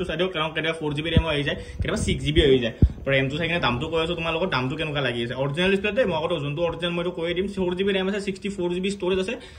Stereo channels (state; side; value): identical; both; correlation 1.00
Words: চাই দিওঁ কাৰণ কেতিয়াবা 4GB ৰেমো আহি যায় কেতিয়াবা 6GB হৈ যায় ৰেমটো চাই কিনে দামটো কৈ আছোঁ তোমালোকৰ দামটো কেনেকুৱা লাগি আছে অৰিজিনেল ডিছপ্লেতে মই আকৌ যোনটো অৰিজিনেল মইতো কৈ দিম 4GB ৰেম আছে 64GB ষ্ট'ৰেজ আছে